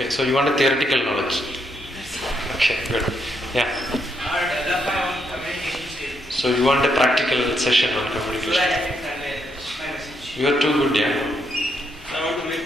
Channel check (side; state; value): both; normal; correlation 0.77